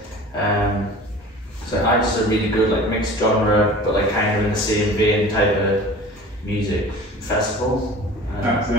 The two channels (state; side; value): normal; both; correlation 0.41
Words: So I just a really good like mixed genre, but like kind of in the same vein type of music festival.